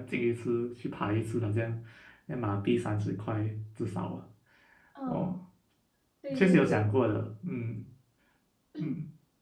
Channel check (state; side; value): identical; both; correlation 1.00